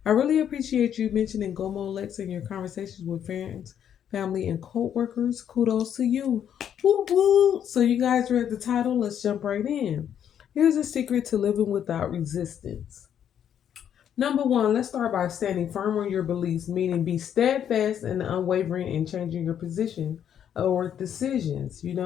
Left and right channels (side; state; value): right; quieter; 9.3 dB